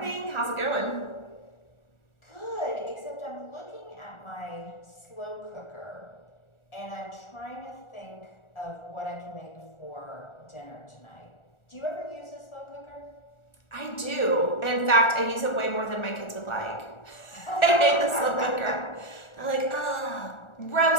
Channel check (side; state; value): right; late; 1.4 ms